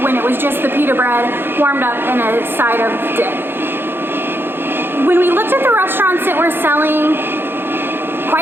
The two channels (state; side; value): late; left; 0.10 ms